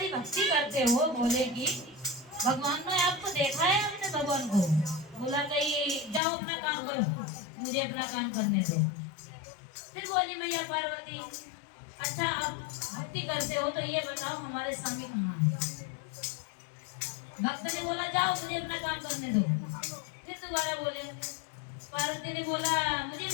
भक्ति करते हो भोले की, भगवान ने आपको देखा है, हमने भगवान को बोला कि जाओ अपना काम करो, मुझे अपना काम करने दो। फिर बोली मैया पार्वती, अच्छा आप भक्ति करते हो तो ये बताओ हमारे स्वामी कहाँ है? भक्त ने बोला जाओ मुझे अपना काम करने दो। फिर दोबारा बोले, पार्वती ने बोला मुझे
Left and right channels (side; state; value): right; drops out; at 6.2 s